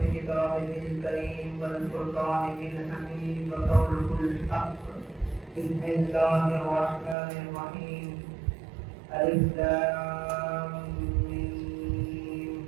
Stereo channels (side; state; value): left; drops out; at 7.2 s